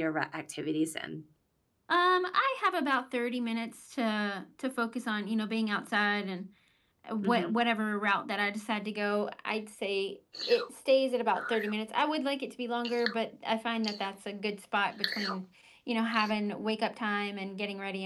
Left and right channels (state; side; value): identical; both; correlation 1.00